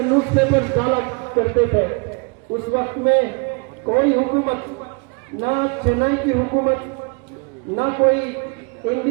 نیوز پیپر ڈالا کرتے تھے. اس وقت میں کوئی حکومت, نہ چنئی کی حکومت, نہ کوئی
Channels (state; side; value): quieter; left; 32.7 dB